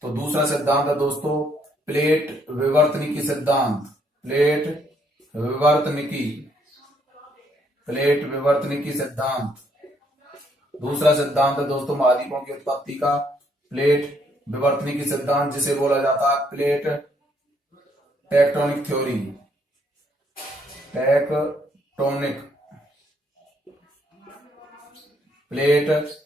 तो दूसरा सिद्धांत है दोस्तों प्लेट विवर्तनिकी सिद्धांत। प्लेट विवर्तनिकी सिद्धांत। दूसरा सिद्धांत है दोस्तों महाद्वीपों की उत्पत्ति का प्लेट विवर्तनिकी सिद्धांत, जिसे बोला जाता है plate tectonic theory. Plate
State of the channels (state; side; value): normal; both; correlation 0.70